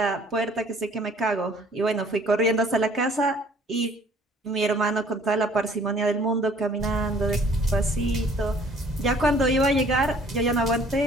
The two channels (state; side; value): normal; both; correlation 0.56